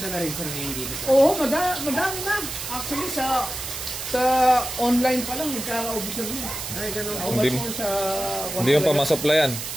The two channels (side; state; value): right; noise; hiss, 7 dB below the sound